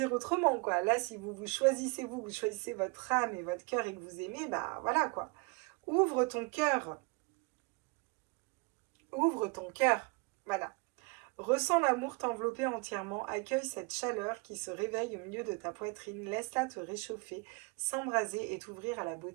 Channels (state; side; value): quieter; left; 29.2 dB